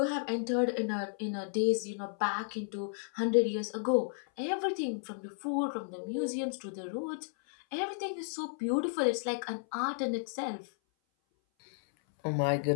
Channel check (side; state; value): right; silent; 56 dB below the other